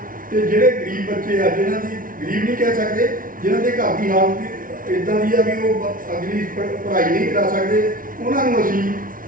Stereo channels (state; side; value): late; left; 0.40 ms